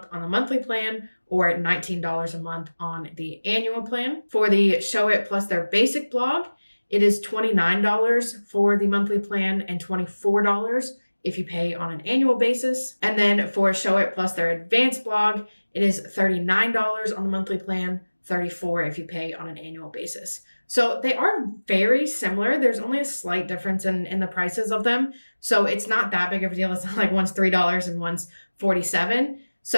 on the monthly plan or $19 a month on the annual plan. For the Showit plus their basic blog, it is $29 for the monthly plan and $24 if you pay on an annual basis. And then for Showit plus their advanced blog, it is $39 on the monthly plan, $34 if you pay on an annual basis. So they are very similar. There's only a slight difference in the prices of them. So it's not that big of a deal. It's not like one's $3 and one's $47.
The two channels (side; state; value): both; inverted; correlation -1.00